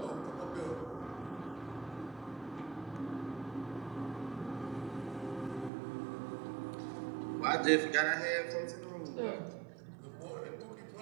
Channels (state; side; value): drops out; left; at 5.7 s